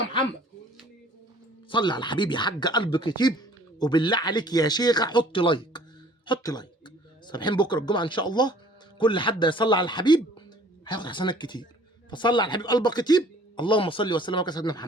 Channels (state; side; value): normal; both; correlation 0.53